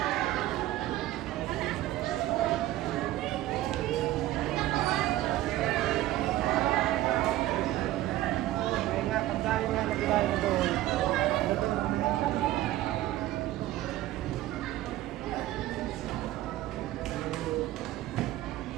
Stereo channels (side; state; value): left; quieter; 15.3 dB